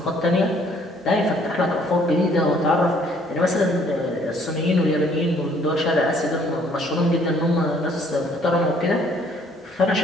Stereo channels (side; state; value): both; normal; correlation 0.62